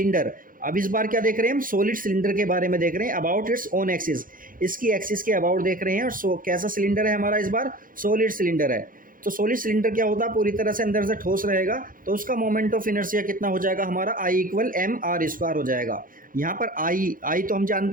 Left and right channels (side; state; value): left; late; 0.40 ms